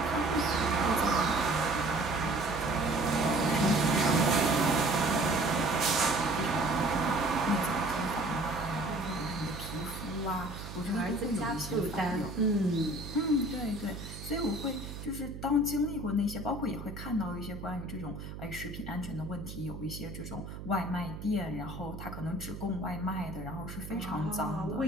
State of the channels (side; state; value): right; noise; hum, 10 dB below the sound